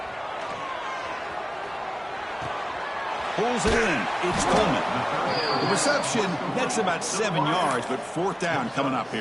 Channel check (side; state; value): both; identical; correlation 1.00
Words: Pulls it in. It's Coleman. The reception, that's about 7 yards, but fourth down coming up